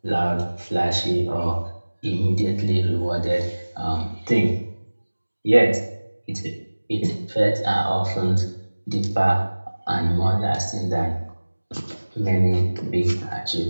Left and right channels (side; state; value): both; inverted; correlation -1.00